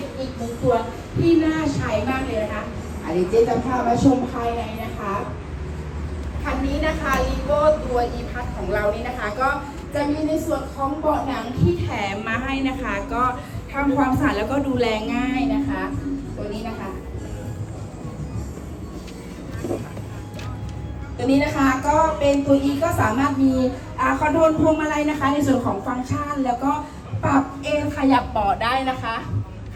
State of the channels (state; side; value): identical; both; correlation 1.00